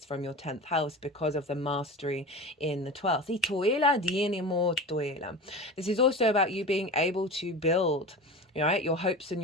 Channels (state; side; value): normal; both; correlation 0.31